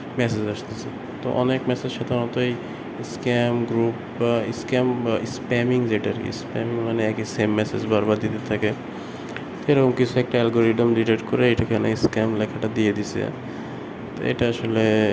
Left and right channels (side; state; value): both; identical; correlation 1.00